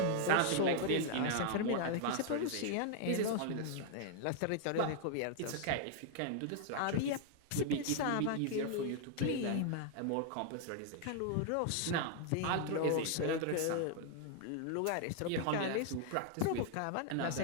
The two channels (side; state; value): both; different; correlation 0.00